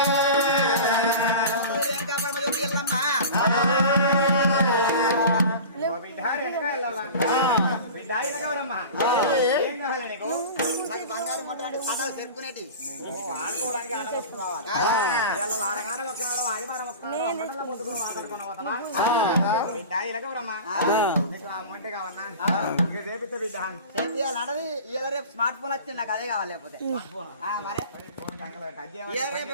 బంగారు మొట్టలు పటాలు తెరుకునేటి ఆడుకోవడానికి ఆడ వస్తున్నాడు వారంగారం ఒక్కనాడు ఆదివారం ఒక్కనాడు పొద్దుకుని మాట్లాడుకున్నా పోతామా బిడ్డ ఇలాగవరమ్మా మొంటే కావన్నా చేపిస్తే బిడ్డ చేయాలి ఇలా రేపు స్మార్ట్ ఫోన్ వచ్చింది నాకు అదే కావాలి లేకపోతే మరే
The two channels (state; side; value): inverted; both; correlation -0.35